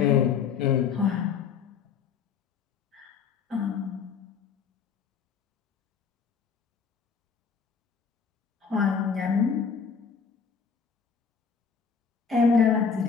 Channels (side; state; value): right; quieter; 6.1 dB